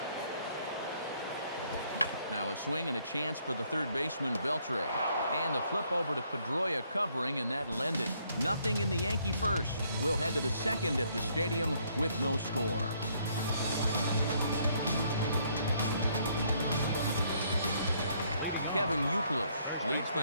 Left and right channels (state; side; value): inverted; both; correlation -0.68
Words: Now a swing and a chance for the third baseman Beltre. And the flip over to Pedroia covering, and that'll end it. Nothing in the Yankee first. We'll head to the second at the stadium with no score. Kevin Youkilis leads